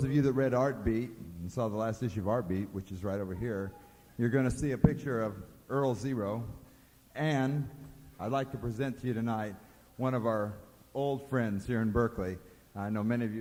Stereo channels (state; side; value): identical; both; correlation 1.00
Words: of you that read Artbeat and saw the last issue of Artbeat, which is right over here, you're going to see a picture of Earl Zero. And I'd like to present to you tonight one of our old friends here in Berkeley. I know many of